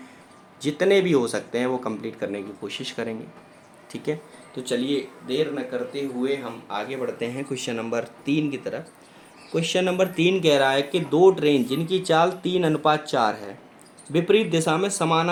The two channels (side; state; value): both; identical; correlation 1.00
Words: जितने भी हो सकते हैं वो कंप्लीट करने की कोशिश करेंगे। ठीक है, तो चलिए देर न करते हुए हम आगे बढ़ते हैं क्वेश्चन नंबर 3 की तरफ। क्वेश्चन नंबर 3 कह रहा है कि दो ट्रेन जिनकी चाल 3:4 है विपरीत दिशा में